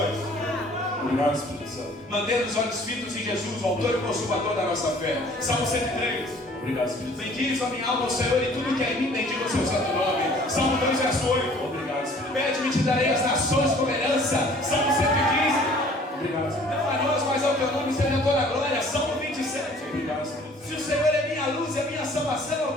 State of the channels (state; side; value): normal; both; correlation 0.53